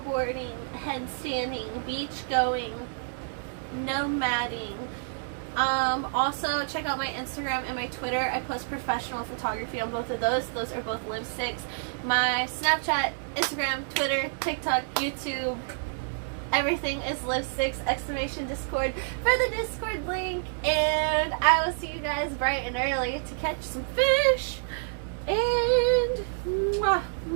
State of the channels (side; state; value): left; silent; digital silence